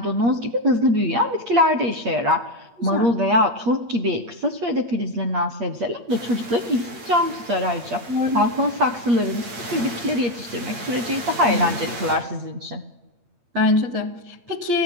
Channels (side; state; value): left; late; 8.6 ms